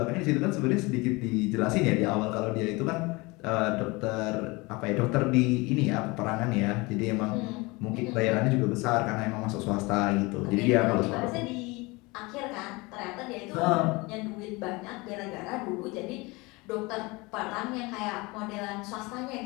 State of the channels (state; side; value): quieter; right; 24.6 dB